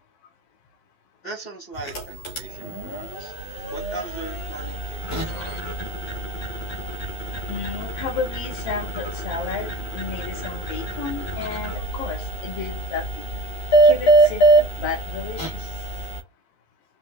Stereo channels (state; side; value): late; right; 12 ms